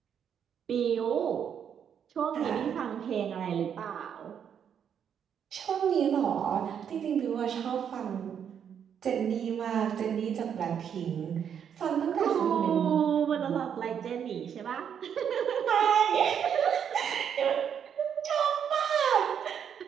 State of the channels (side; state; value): left; quieter; 8.2 dB